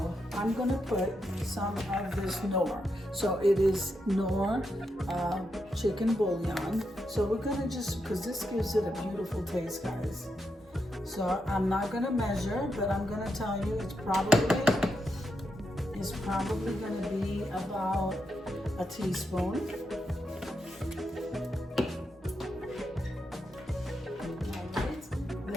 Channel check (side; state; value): both; normal; correlation 0.83